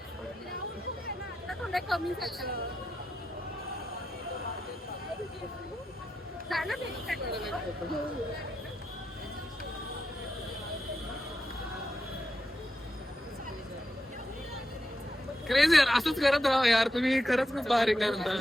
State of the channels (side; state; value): both; normal; correlation 0.86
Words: कमी झालं क्रेझी यार असंच करत राहा यार तुम्ही खरंच खूप भारी करता